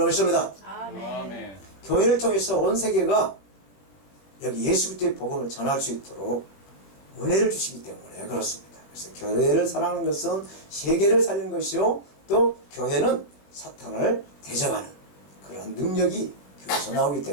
믿습니다. 아멘. 교회를 통해서 온 세계가 여기 예수 그리스도의 복음을 전할 수 있도록 은혜를 주시기 때문에 그렇습니다. 그래서 교회를 사랑하는 것은 세계를 살리는 것이요 또 교회는 사탄을 대적하는 그런 능력이 교회에서 나오기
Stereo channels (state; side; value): late; right; 20 ms